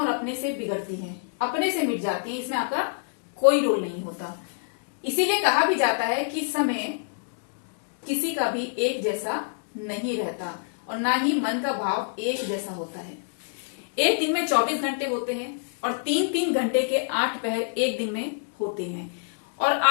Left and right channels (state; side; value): silent; right; digital silence